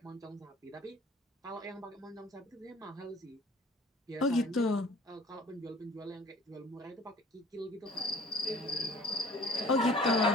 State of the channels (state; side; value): normal; both; correlation 0.50